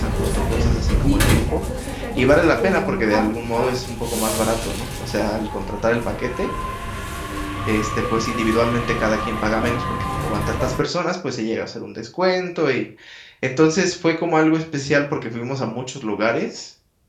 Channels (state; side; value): identical; both; correlation 1.00